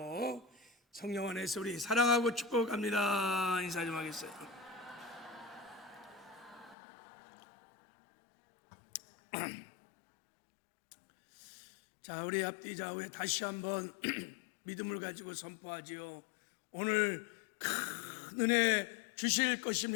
성령 안에서 우리 사랑하고 축복합니다. 인사 좀 하겠어요. 자, 우리 앞뒤 좌우에 다시 한번 믿음을 가지고 선포하지요. 오늘 큰 은혜 주실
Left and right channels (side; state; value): right; drops out; at 6.8 s